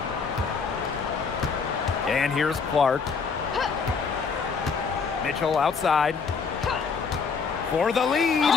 And here's Clark. Mitchell outside for the lead.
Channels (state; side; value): quieter; right; 5.4 dB